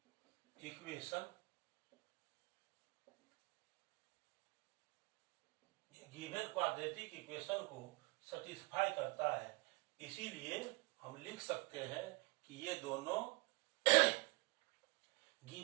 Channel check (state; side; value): quieter; left; 27.1 dB